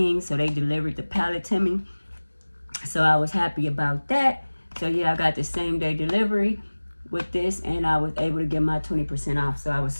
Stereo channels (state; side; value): inverted; both; correlation -1.00